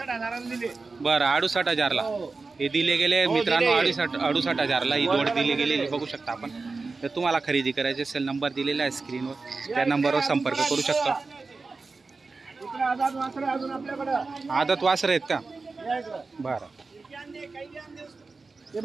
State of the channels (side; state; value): left; quieter; 4.0 dB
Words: दिले. बरं 68,000ला हे दिले गेले मित्रांनो. 68,000ला ही जोड दिली गेलेली बघू शकता आपण. तर तुम्हाला खरेदी करायची असेल नंबर दिलेला आहे स्क्रीनवर. त्या नंबरवर संपर्क करू शकता. इकडे आझाद वासरे अजून आपल्याकडं. आदत वासर आहेत का? या इकडं. बरं हे